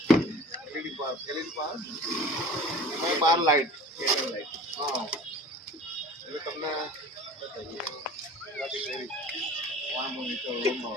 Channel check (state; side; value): normal; both; correlation 0.42